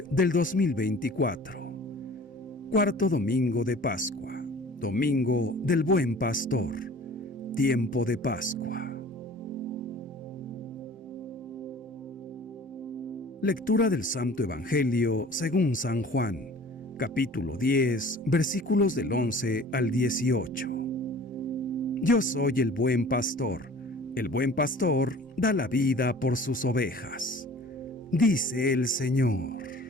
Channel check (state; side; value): normal; both; correlation 0.46